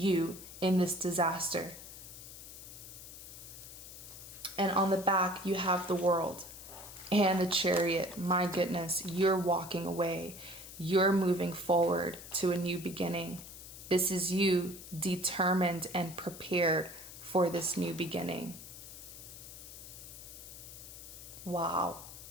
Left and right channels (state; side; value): noise; left; hiss, 14 dB below the sound